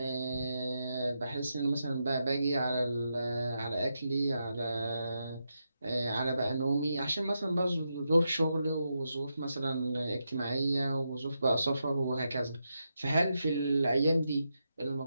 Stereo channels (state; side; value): inverted; both; correlation -0.85